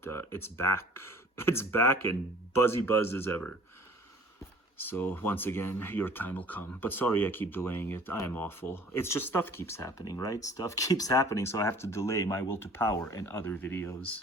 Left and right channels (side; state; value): both; normal; correlation 0.50